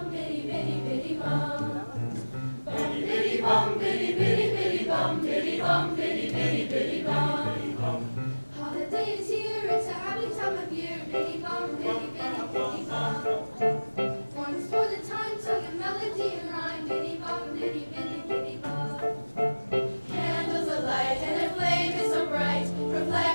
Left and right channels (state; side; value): inverted; both; correlation -1.00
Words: Holiday is here, it's a happy time of year. Biddy bum, biddy, biddy, biddy bum. Once for the time, sung a melody and rhyme. Biddy bum, biddy, biddy, biddy bum. Candles alight and their flame is so bright,